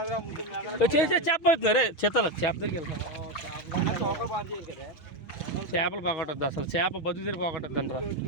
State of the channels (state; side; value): late; right; 6.4 ms